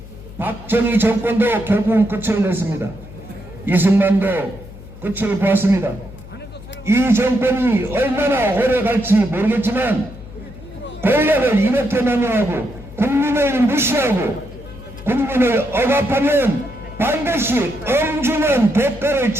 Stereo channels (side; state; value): left; noise; hum, 17 dB below the sound